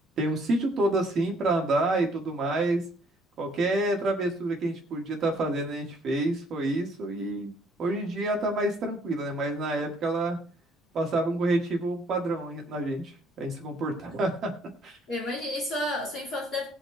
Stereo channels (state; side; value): normal; both; correlation 0.63